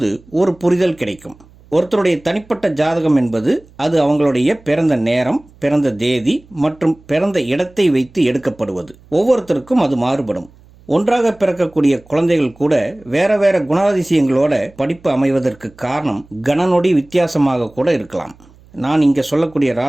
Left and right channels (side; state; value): right; noise; hum, 27 dB below the sound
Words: ஒரு புரிதல் கிடைக்கும். ஒருத்தருடைய தனிப்பட்ட ஜாதகம் என்பது அது அவங்களுடைய பிறந்த நேரம், பிறந்த தேதி மற்றும் பிறந்த இடத்தை வைத்து எடுக்கப்படுவது. ஒவ்வொருத்தருக்கும் அது மாறுபடும். ஒன்றாக பிறக்கக்கூடிய குழந்தைகள் கூட வேற வேற குணாதிசயங்களோட படிப்பு அமைவதற்கு காரணம் கணநொடி வித்தியாசமாக கூட இருக்கலாம். நான் இங்கே சொல்லக்கூடிய